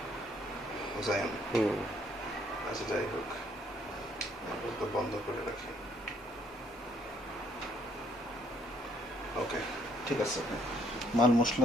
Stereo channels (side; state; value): both; normal; correlation 0.66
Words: জায়ন। আচ্ছা, যাই হোক, তো বন্ধ করে রাখি। ওকে, ঠিক আছে। মাল